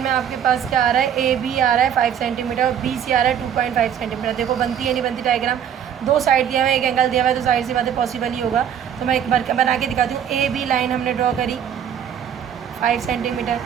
आपके पास क्या आ रहा है, ए बी आ रहा है 5 सेंटीमीटर और बी सी आ रहा है 2.5 सेंटीमीटर। देखो बनती है नहीं बनती डायग्राम, दो साइड दिया हुआ है, एक एंगल दिया हुआ है, तो साइड से बातें पॉसिबल ही होगा। तो मैं एक बार बना के दिखाती हूँ। ए बी लाइन हमने ड्रॉ करी 5 सेंटीमीटर।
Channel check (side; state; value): left; quieter; 8.9 dB